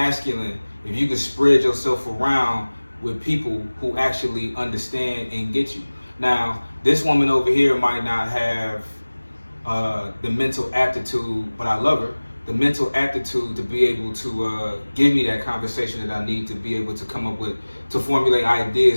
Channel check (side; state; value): both; inverted; correlation -1.00